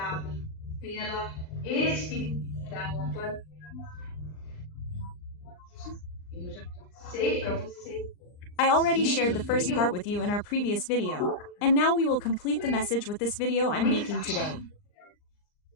I already shared the first part with you in our previous video, and now we will complete the message with this video I'm making today.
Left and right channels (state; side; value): late; right; 39 ms